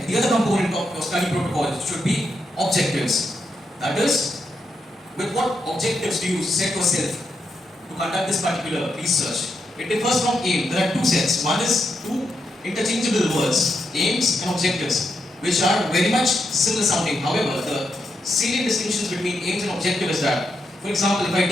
the other component of your study protocol should be objectives. That is, with what objectives do you set yourself to conduct this particular research? It differs from aim. There are two sets. One is two interchangeable words, aims and objectives, which are very much similar sounding. However, the salient distinctions between aims and objective is that, for example, if I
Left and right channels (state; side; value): normal; both; correlation 0.83